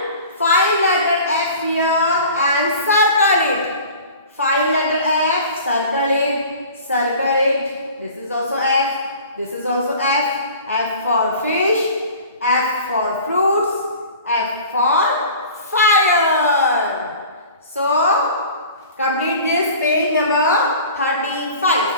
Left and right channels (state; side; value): inverted; both; correlation -0.43